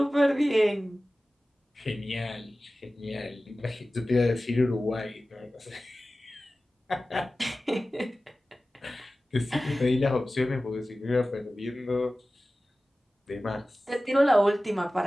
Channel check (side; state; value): both; normal; correlation 0.96